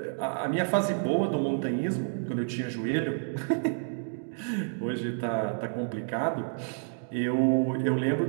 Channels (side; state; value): left; silent; digital silence